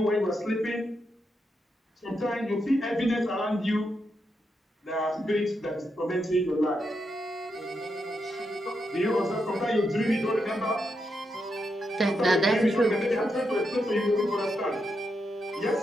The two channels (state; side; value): normal; both; correlation 0.83